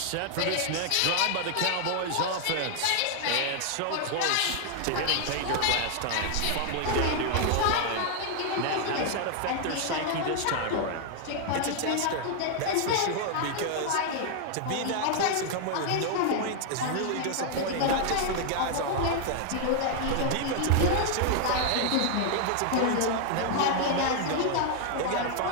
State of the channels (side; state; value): both; different; correlation 0.00